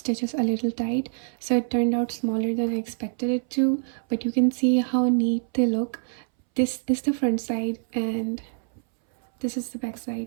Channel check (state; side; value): silent; left; 61 dB below the other